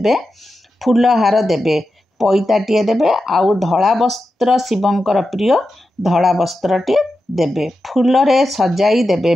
फूल हार देबे, पैताटिए देबे, आउ धला वस्त्र शिवंकर प्रिय धला वस्त्रटे देबे, फूल रे सजाई देबे,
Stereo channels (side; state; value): both; normal; correlation 0.90